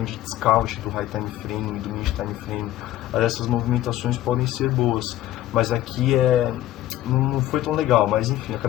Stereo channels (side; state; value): right; quieter; 14.0 dB